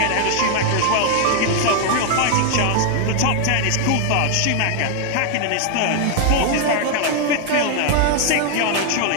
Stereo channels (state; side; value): different; both; correlation 0.00